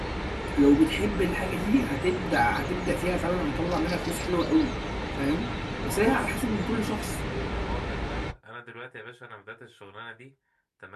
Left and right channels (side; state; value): both; identical; correlation 1.00